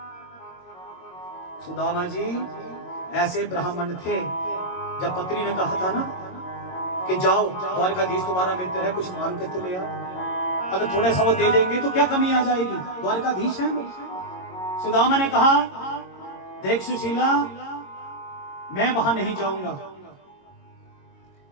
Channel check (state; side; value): late; right; 22 ms